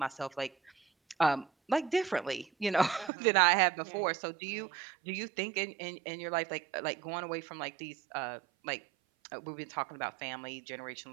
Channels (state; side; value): drops out; left; at 3.1 s